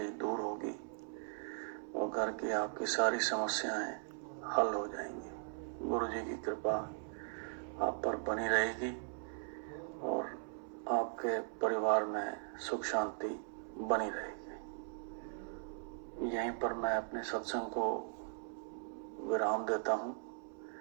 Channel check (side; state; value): left; silent; 52 dB below the other